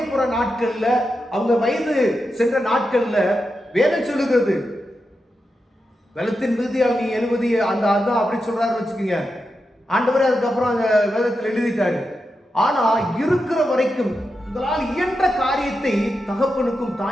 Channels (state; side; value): normal; both; correlation 0.88